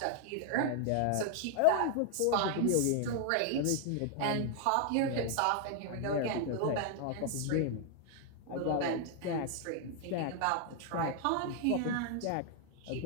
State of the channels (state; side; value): different; both; correlation 0.00